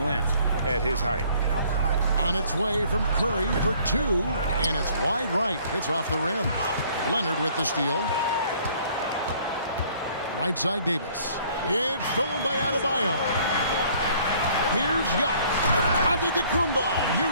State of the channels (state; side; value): inverted; both; correlation -0.58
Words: at his height. On its way from Curry for 2, and it's wide right. Hits off the rim. Leonard with the steal. Right side Davis. It's stolen by Adebayo. Here's Giannis. Antetokounmpo